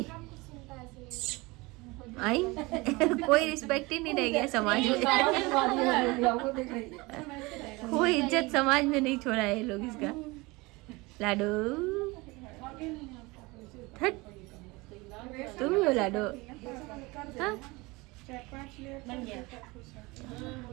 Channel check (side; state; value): left; quieter; 23.7 dB